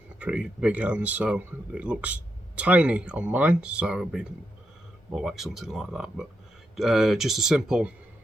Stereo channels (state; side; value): normal; both; correlation 0.83